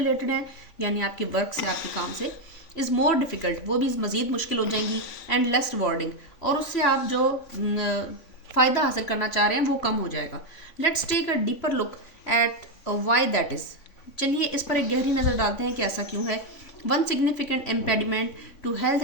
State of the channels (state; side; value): late; right; 3.5 ms